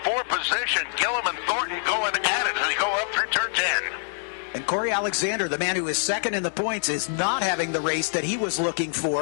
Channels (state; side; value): silent; right; digital silence